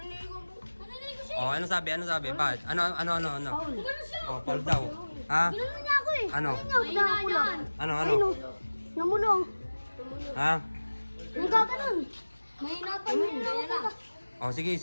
siya. Oh, ano sabi? Ano sabi? Bakit? Ano? Ganun siya. Oh, Paul daw. Ha? Ganun niya ako eh. Ano? Mahina yan. Ano? Namulong. Ha? Nagkaganon. Mahina pa yun. Ganyan na. Oh, sige.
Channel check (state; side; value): inverted; both; correlation -1.00